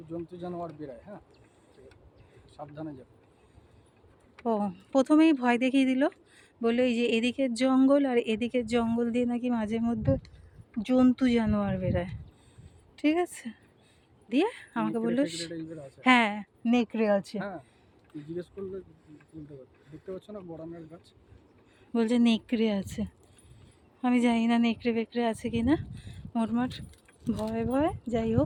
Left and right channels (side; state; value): both; identical; correlation 1.00